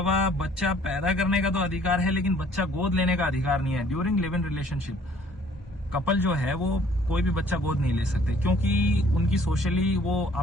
बच्चा पैदा करने का तो अधिकार है, लेकिन बच्चा गोद लेने का अधिकार नहीं है। During live in relationship couple जो है वो कोई भी बच्चा गोद नहीं ले सकते, क्योंकि उनकी सोशली वो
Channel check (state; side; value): normal; both; correlation 0.58